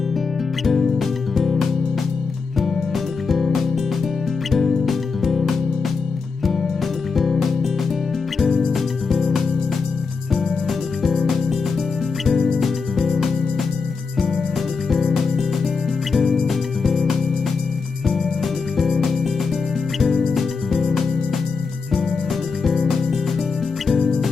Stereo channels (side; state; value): right; quieter; 4.8 dB